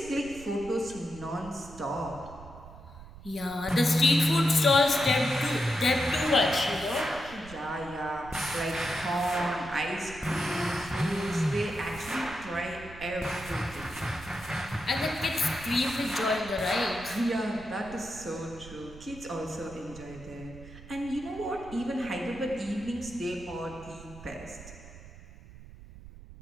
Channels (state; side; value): noise; right; rumble, 17 dB below the sound